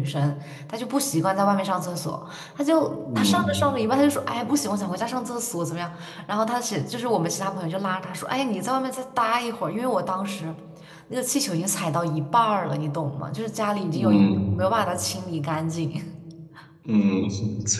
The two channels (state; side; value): identical; both; correlation 1.00